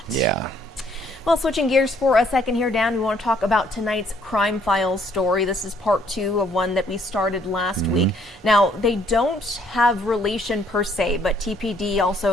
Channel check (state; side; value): normal; both; correlation 0.65